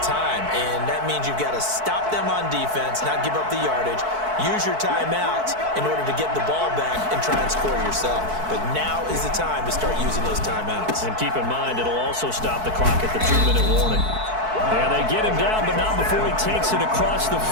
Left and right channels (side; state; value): left; late; 4.6 ms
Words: and that means you've got to stop them on defense, not give up the yardage, use your timeouts in order to get the ball back and try and score yourself. But now is the time to start using those timeouts. And keep in mind, it'll also stop the clock at the 2-minute warning. And they get him down, but not before he takes it across the